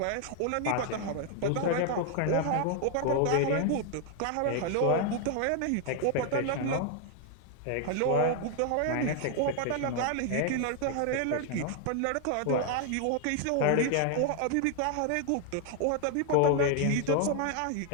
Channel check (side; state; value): both; different; correlation 0.00